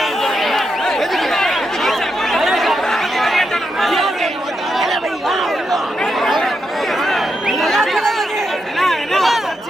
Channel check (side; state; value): both; normal; correlation 0.84